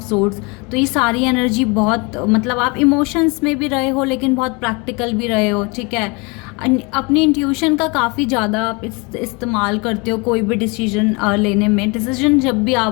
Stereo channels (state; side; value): quieter; right; 29.1 dB